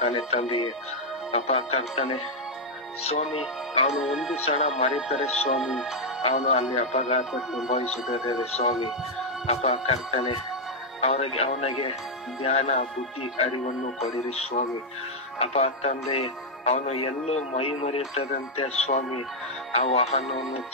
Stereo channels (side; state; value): both; normal; correlation -0.02